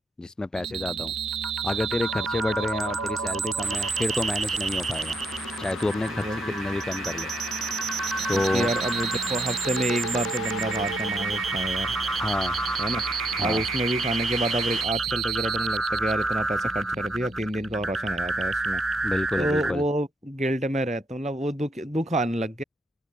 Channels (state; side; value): normal; both; correlation 0.76